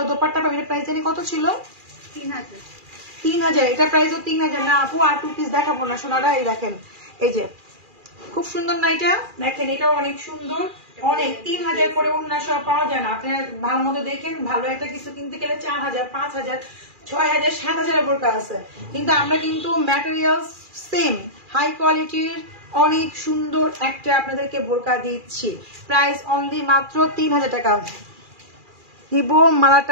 দোপাট্টা পাবেন। প্রাইস জানি কত ছিল? 3000। এটা প্রাইসও 3000 না আপু, আর 2 পিস দেখাবো না সোনারা। এই দেখেন এই যে খুব সুন্দর না এটা, দেখেন এটাও অনেক সুন্দর, অনেক 3000 করে অন্য সব পাওয়া যায় না। আপনার ভালো মতো দেখেন, ভালো একটা কিছু কিনতে গেলে 4000, 5000, 6000, 7000 বোরকা আছে, কিন্তু আমরা কিন্তু ম্যাটেরিয়াল সেম হাই কোয়ালিটির অনেক সুন্দর একটা আপনাদেরকে বোরকা দিচ্ছি। প্রাইস অনলি মাত্র 3000 টাকা। নিব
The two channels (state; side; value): late; left; 2.4 ms